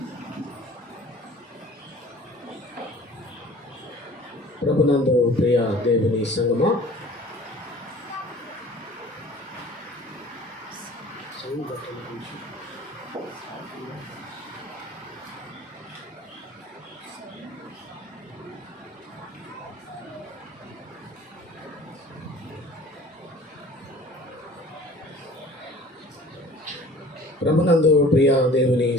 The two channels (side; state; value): both; normal; correlation 0.47